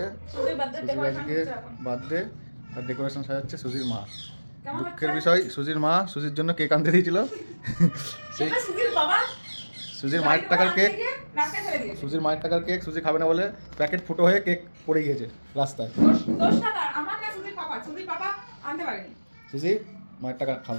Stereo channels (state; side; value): inverted; both; correlation -1.00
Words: সুজির আজকে বার্থডে আর ডেকোরেশন সাজাচ্ছে সুজির মা। দুঃখের বিষয় সুজির মা সুজির জন্য কেক আনতে দিয়েছিল, সেই সুজির মায়ের টাকার কেক, সুজির মায়ের টাকার কেক সুজি খাবে না বলে প্যাকেট ফুটো হয়ে কেক পড়ে গিয়েছে রাস্তায়। সুজি মায়ের টাকা